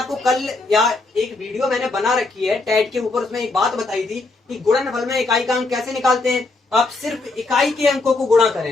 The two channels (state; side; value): quieter; right; 3.4 dB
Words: कल या एक वीडियो मैंने बना रखी है टैट के ऊपर, उसमें एक बात बताई थी कि गुणनफल में इकाई का अंक कैसे निकालते हैं। आप सिर्फ इकाई के अंकों को गुणा